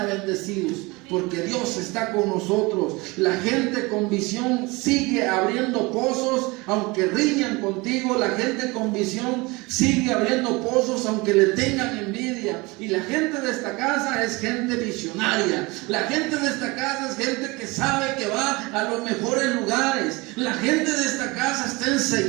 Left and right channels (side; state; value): left; quieter; 24.5 dB